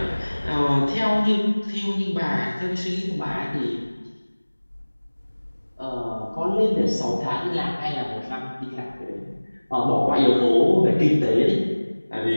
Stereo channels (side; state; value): both; inverted; correlation -1.00